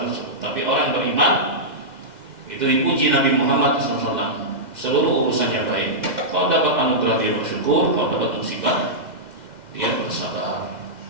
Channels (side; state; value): left; late; 2.1 ms